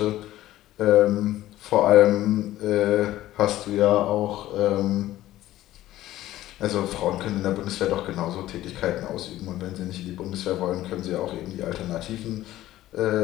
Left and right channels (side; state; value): right; quieter; 14.7 dB